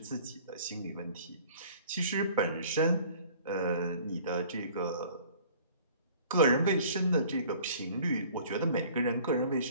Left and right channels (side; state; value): both; inverted; correlation -0.51